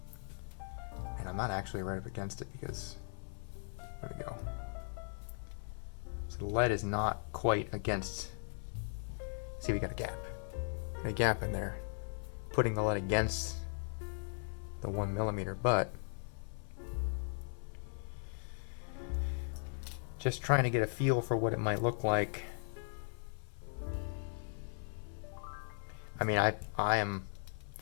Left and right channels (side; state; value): right; silent; 52 dB below the other